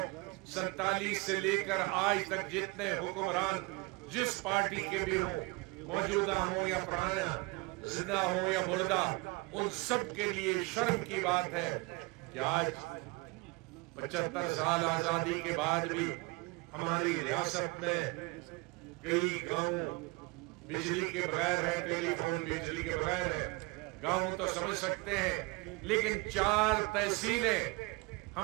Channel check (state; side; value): quieter; left; 25.8 dB